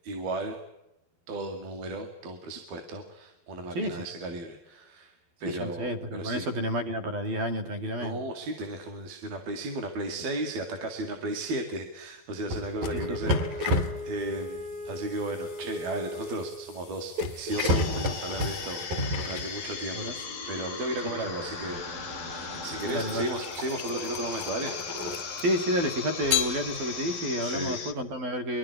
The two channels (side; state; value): left; late; 12 ms